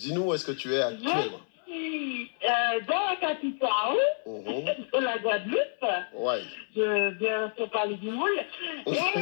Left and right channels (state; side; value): silent; right; 59 dB below the other